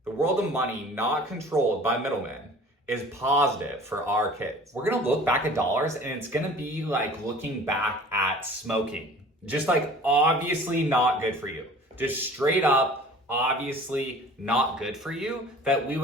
the world of money not controlled by middlemen, is positive for our kids. We're gonna look back at dollars, and it's gonna be like looking back at smoking. Just like obviously not good for you. Just straight up obviously not good for you, that we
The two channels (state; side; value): normal; both; correlation 0.45